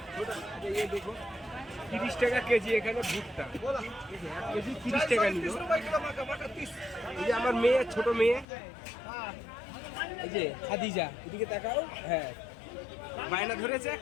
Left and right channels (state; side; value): drops out; right; at 8.5 s